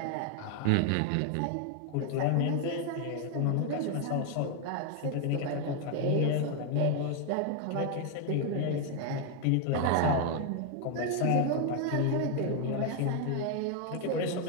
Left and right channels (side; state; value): both; different; correlation 0.01